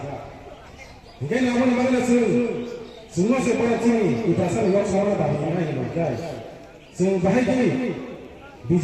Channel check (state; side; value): identical; both; correlation 1.00